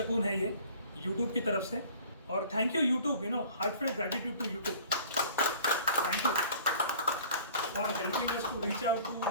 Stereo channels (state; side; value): inverted; both; correlation -0.48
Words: है ये यूट्यूब की तरफ से. और thank you YouTube, you know, heartfelt gratitude to YouTube. Thank you for helping us to reach out to